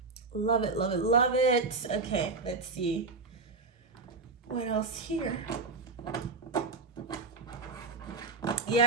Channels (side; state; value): left; quieter; 4.0 dB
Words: Love it, love it, love it. Okay, let's see. What else here?